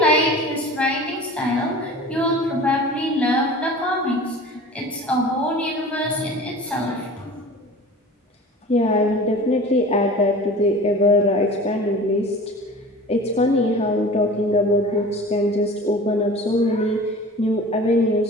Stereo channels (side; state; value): both; normal; correlation 0.40